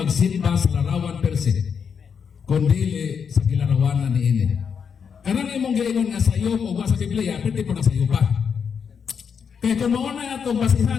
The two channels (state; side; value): quieter; right; 6.7 dB